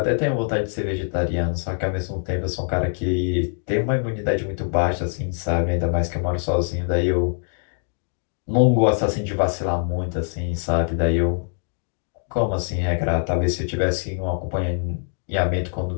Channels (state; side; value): silent; right; 60 dB below the other